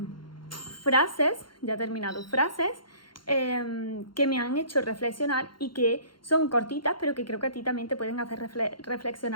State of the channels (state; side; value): late; right; 0.72 ms